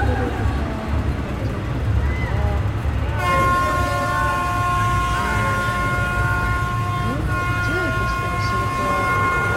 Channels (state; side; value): identical; both; correlation 1.00